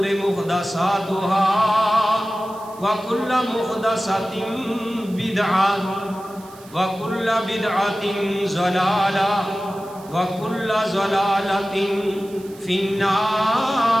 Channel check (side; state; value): right; noise; hiss, 23 dB below the sound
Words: محدثاتها وكل محدثة بدعة وكل بدعة ضلالة وكل ضلالة في النار